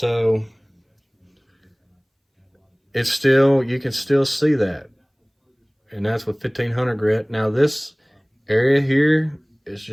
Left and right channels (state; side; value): identical; both; correlation 1.00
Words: it's still, you can still see that. And that's with 1500 grit. Now this area here is